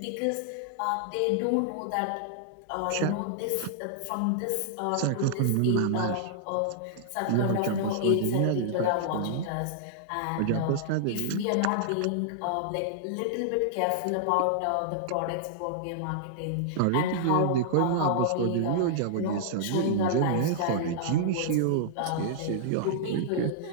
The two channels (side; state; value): both; different; correlation -0.01